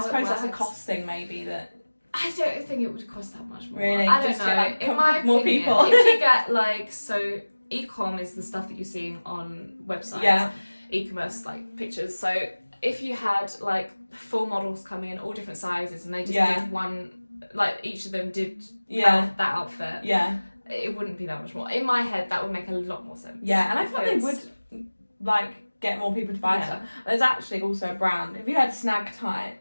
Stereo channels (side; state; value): both; inverted; correlation -1.00